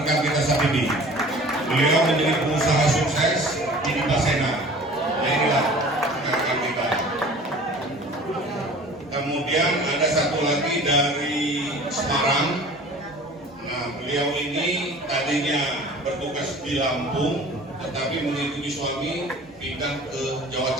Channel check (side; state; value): both; normal; correlation 0.44